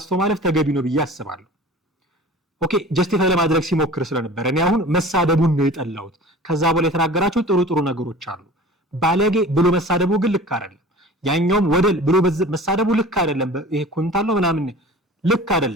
ማለፍ ተገቢ ነው ብዬ አስባለሁ። ኦኬ ጀስቲፋይ ለማድረግ ሲሞክር ስለነበር እኔ አሁን መሳደቡን ነው የጠላሁት። ከዛ በኋላ የተናገራቸው ጥሩ ነገሮች አሉ። ባለጌ ብሎ መሳደቡ ግን ልክ አይደለም። ያኛውም ወደል ብሎ መሳደቡ ልክ አይደለም። ይሄ ኩንታል ነው ምናምን ልክ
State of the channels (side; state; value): both; normal; correlation 0.41